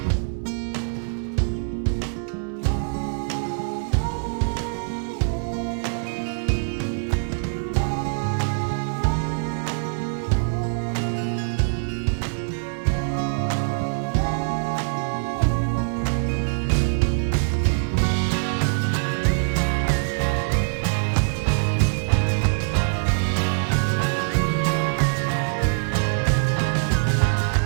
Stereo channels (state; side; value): silent; left; digital silence